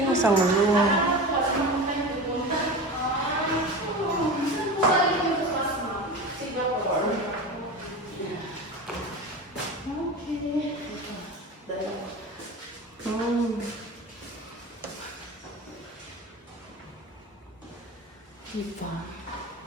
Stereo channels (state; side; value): normal; both; correlation 0.28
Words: isang room. Diba?